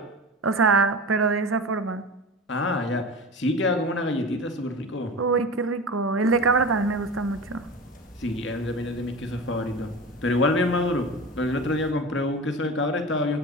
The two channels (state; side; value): normal; both; correlation 0.31